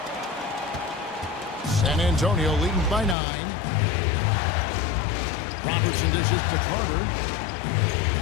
San Antonio leading by 9. Robertson dishes to Carter.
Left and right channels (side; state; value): right; drops out; at 3.2 s